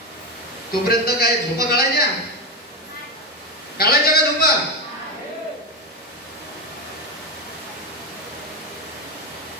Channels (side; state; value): both; normal; correlation 0.13